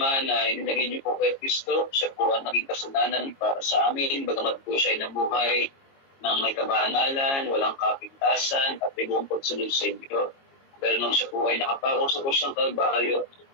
na inilagay niyo po kay Kristo. Siya po ang naging kasalanan para sa amin. Bagamat po siya ay nabuhay ng may kabanalan, walang kapintasan at may buong pagsunod sa inyo. Pero nang siya po ay nakapako sa kusyang Kalbaryo,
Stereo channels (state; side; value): late; right; 22 ms